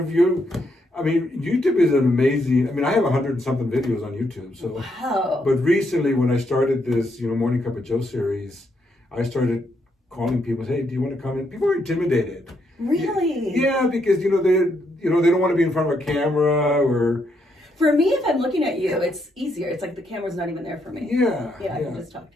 YouTube is an amazing. I have 100 and something videos on YouTube. So, Wow. but recently when I started this, Morning Cup of Joe series, I started calling people, hey, do you want to come in? People are intimidated. Really? Yeah, because they don't want to be in front of a camera or. For me, if I'm looking at you, it's easier. It's like the camera's not even there for me. Yeah. Yeah, I can just talk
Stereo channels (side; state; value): both; normal; correlation 0.77